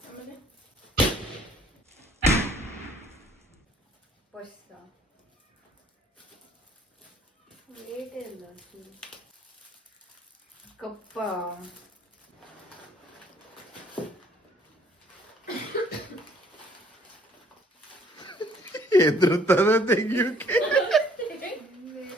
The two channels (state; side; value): normal; both; correlation 0.61